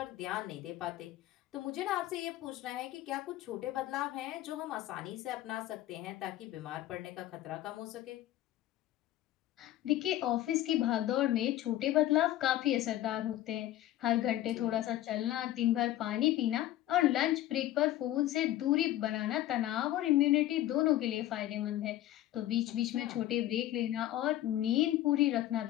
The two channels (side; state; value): right; quieter; 14.0 dB